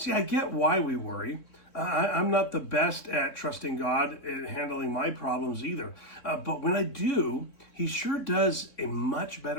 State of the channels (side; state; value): right; late; 3.6 ms